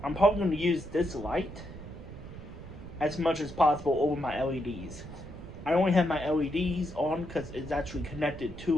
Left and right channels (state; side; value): noise; right; rumble, 13 dB below the sound